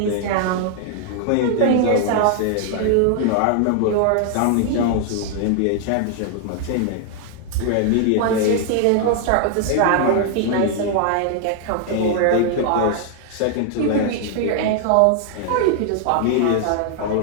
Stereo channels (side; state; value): both; different; correlation 0.00